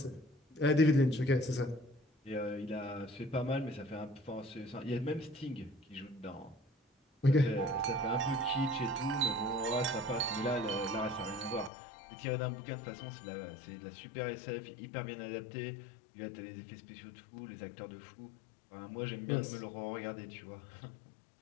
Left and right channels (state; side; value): drops out; right; at 11.7 s